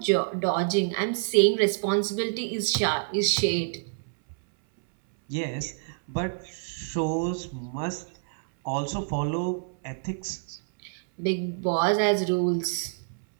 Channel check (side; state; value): left; silent; 60 dB below the other